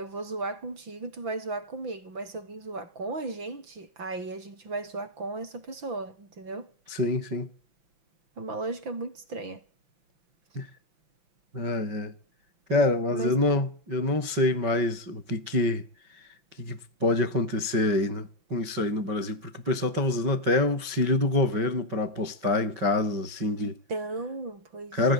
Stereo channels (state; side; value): late; left; 5.9 ms